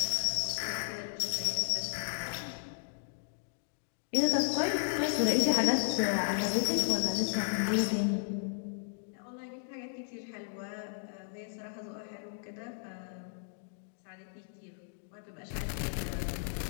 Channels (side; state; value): right; silent; digital silence